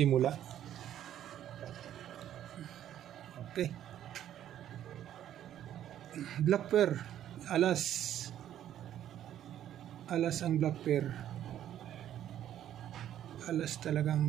Okay. Black pair. Alas ang black pair. Alas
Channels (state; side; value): quieter; left; 11.2 dB